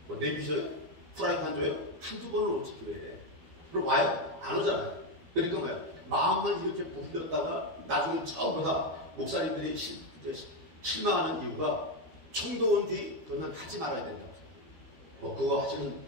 뭐 내비셔요? 프라이팬 줘요? 한두 번을 오지 교회에. 그럼 와요? 안 오잖아요. 그러니까 뭐야? 마음만 이렇게 부풀렸다가 나중에 처음 보다 목사님들이 실망하는 이유가 총도 온 뒤 그건 하지 말아야 된다고. 뭐 그거 하시는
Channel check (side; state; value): left; late; 12 ms